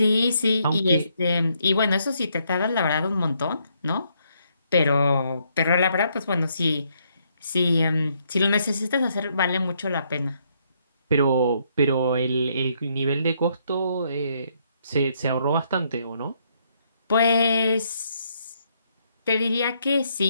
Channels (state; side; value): inverted; both; correlation -0.73